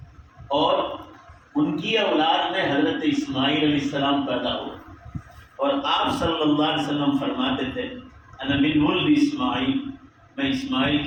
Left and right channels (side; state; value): both; identical; correlation 1.00